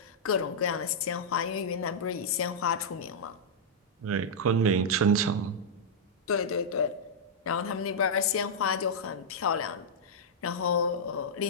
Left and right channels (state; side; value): normal; both; correlation -0.08